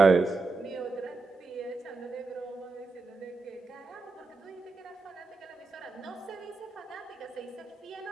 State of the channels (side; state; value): left; quieter; 3.8 dB